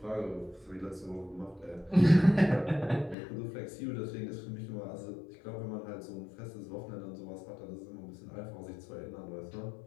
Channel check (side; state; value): right; drops out; at 3.2 s